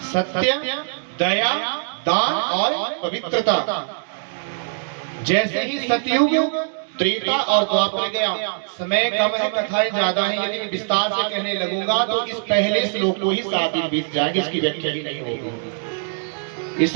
सत्य, दया, दान और पवित्रता। जैसे ही सतयुग, त्रेता और द्वापर गया, समय कम है, कथाएं ज्यादा है, यदि मैं विस्तार से कहने लगूंगा तो इस पहले श्लोक को ही 7 दिन बीत जाएंगे, इसकी व्याख्या ही नहीं होगी।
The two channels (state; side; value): silent; left; digital silence